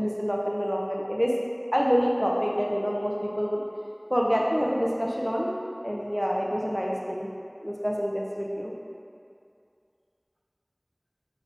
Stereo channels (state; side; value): identical; both; correlation 1.00